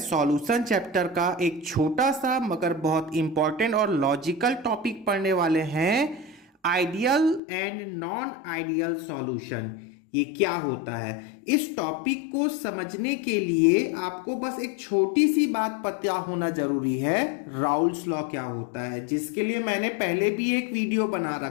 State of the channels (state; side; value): drops out; right; at 7.4 s